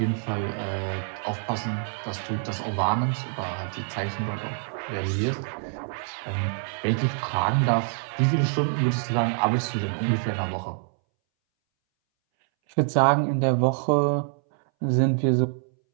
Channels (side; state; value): left; silent; 61 dB below the other